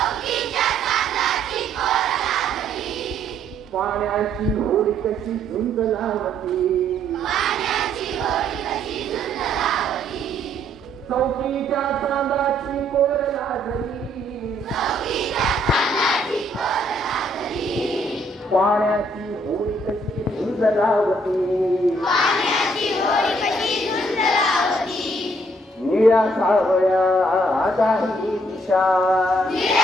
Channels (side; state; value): both; normal; correlation 0.68